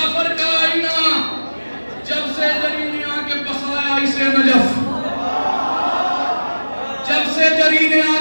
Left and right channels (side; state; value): both; inverted; correlation -1.00